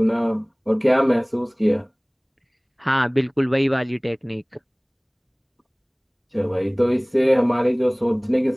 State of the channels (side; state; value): both; identical; correlation 1.00